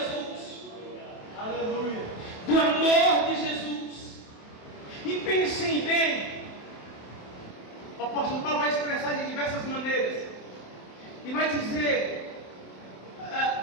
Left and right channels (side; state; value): right; late; 27 ms